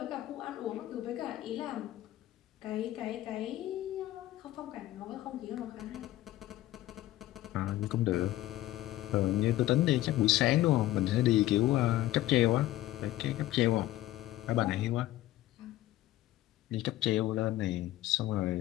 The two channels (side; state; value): right; quieter; 15.2 dB